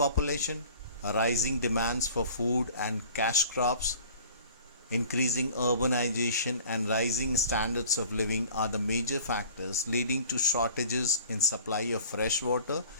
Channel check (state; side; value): inverted; both; correlation -0.46